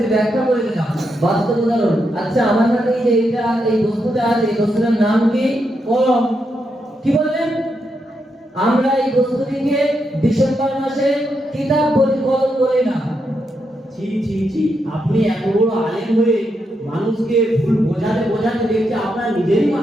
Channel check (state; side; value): normal; both; correlation 0.82